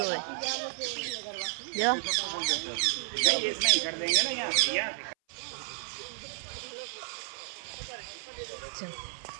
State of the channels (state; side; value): silent; left; 56 dB below the other